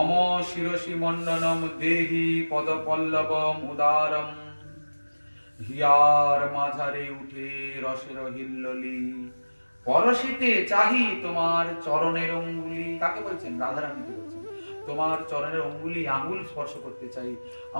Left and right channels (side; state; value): both; inverted; correlation -1.00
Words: শিরসি মণ্ডনম দেহি পদ পল্লবম উদারম হিয়ার মাঝারে উঠে রসের হিল্লোলি পরশিতে চাহি তোমার চরণের অঙ্গুলি। কাকে বলছেন? রাধারানীকে বলছেন। তোমার চরণের অঙ্গুলি, আঙ্গুল স্পর্শ করতে চাই।